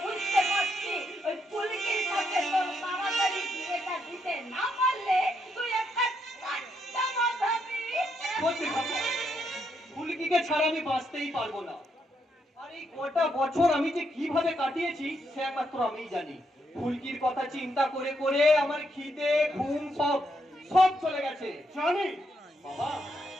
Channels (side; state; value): both; normal; correlation 0.78